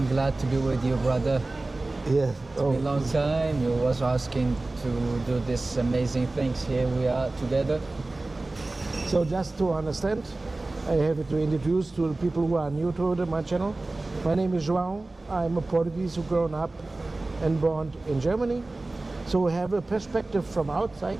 glad to be with you, brother. Yeah. A long time. You was asking to do this amazing things. Here we are together. So just to understand, I have to introduce to the people who are new to my channel. My name is João. I'm a Portuguese who grown up and born in Germany. So I have a perspective from outside,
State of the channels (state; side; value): quieter; left; 3.0 dB